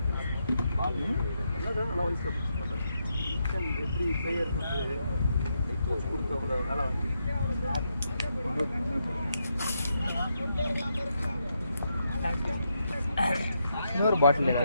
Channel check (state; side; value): inverted; both; correlation -0.81